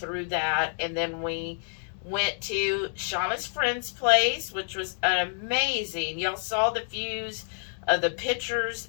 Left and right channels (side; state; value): right; silent; digital silence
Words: that. And then we went to Shauna's friend's place, which was amazing. Y'all saw the views of the pictures.